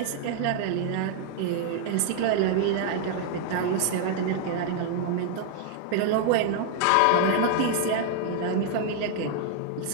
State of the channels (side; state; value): both; different; correlation 0.00